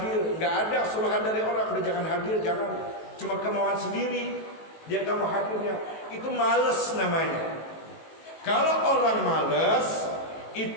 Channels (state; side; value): late; right; 18 ms